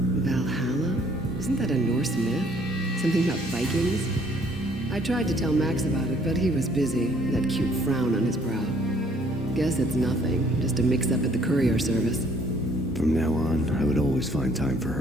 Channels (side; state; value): both; normal; correlation 0.62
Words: Valhalla? Isn't that a Norse myth? Something about Vikings? I tried to tell Max about it, but he was busy, that cute frown on his brow. Guess it's nothing, just a mix-up at the courier service. From now on, I would always find time for